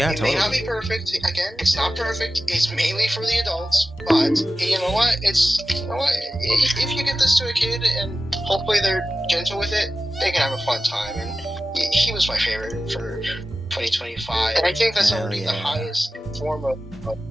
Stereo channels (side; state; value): both; normal; correlation 0.94